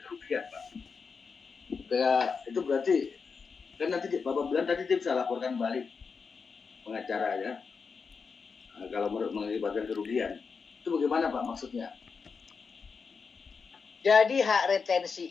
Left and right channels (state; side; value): quieter; right; 5.3 dB